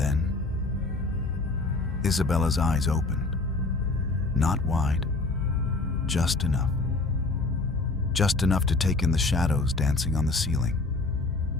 Isabella's eyes opened, not wide, just enough to take in the shadows dancing on the ceiling,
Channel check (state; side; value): quieter; right; 3.4 dB